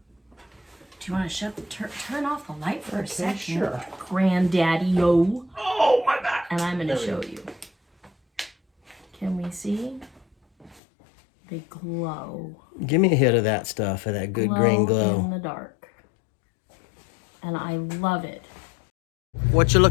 Do you want to turn off the light for a second? Sure. Grandaddy-o. Oh, my back. And I'm going to show you. Can we see? They glow. Give me a hit of that stuff, of that good green glow. In the dark. And I love it. What you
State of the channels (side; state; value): right; drops out; at 10.8 s